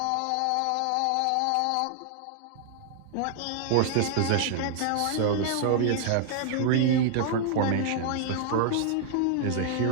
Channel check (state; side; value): different; both; correlation 0.00